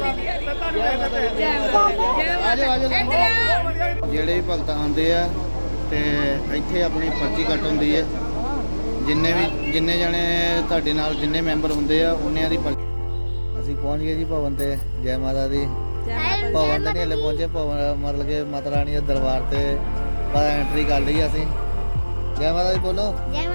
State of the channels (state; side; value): inverted; both; correlation -1.00